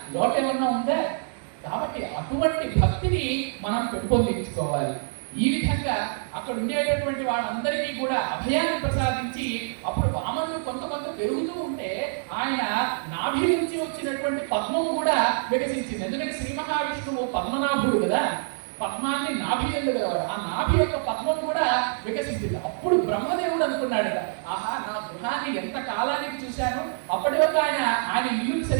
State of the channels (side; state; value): left; silent; digital silence